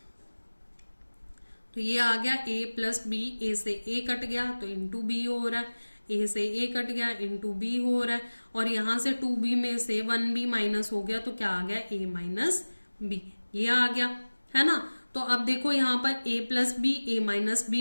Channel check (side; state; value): both; inverted; correlation -1.00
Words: तो ये आ गया a प्लस बी, a से a कट गया तो इंटू बी हो रहा है, a से a कट गया इंटू बी हो रहा है, और यहां से 2b में से 1b माइनस हो गया, तो क्या आ गया a माइनस बी, ये आ गया, है ना। तो अब देखो यहाँ पर a plus B a minus